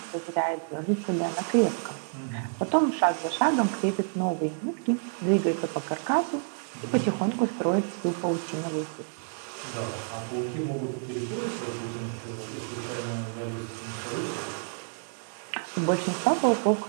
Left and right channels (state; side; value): silent; left; 59 dB below the other